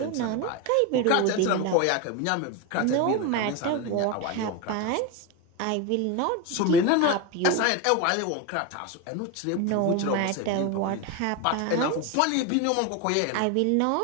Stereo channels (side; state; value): both; different; correlation 0.03